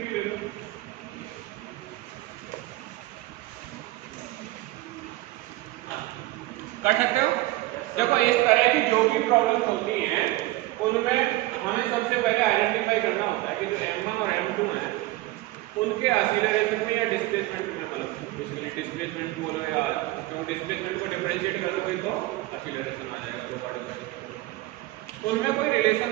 ले लो। कर सकते हो? देखो इस तरह की जो भी प्रॉब्लम्स होती हैं उनमें हमें सबसे पहले आइडेंटिफाई करना होता है कि जो m1 और m2 हैं उनके एक्सीलरेशन में या डिस्प्लेसमेंट में बेसिकली डिस्प्लेसमेंट बोलो या तो डिस्प्लेसमेंट को डिफरेंशिएट करोगे तो एक्सीलरेशन आ जाएगा दो पार्टिकल। उनमें कोई रिलेशन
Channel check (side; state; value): left; quieter; 18.2 dB